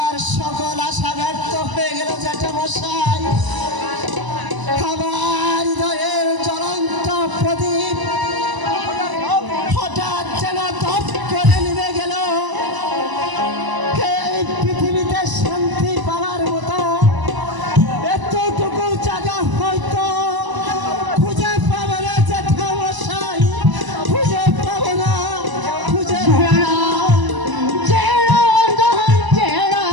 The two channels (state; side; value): late; left; 1.0 ms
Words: সকল আশা ব্যর্থ হয়ে গেল জ্যাঠামশাই। আমার হৃদয়ের জ্বলন্ত প্রদীপ হঠাৎ যেন দপ করে নিভে গেল। এই পৃথিবীতে শান্তি পাওয়ার মতো এতটুকু জায়গা হয়তো খুঁজে পাবো না জ্যাঠামশাই, খুঁজে পাবো না, খুঁজে পাবো না।